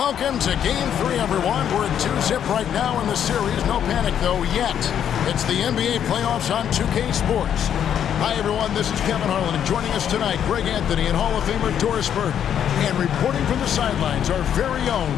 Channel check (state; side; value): quieter; right; 9.2 dB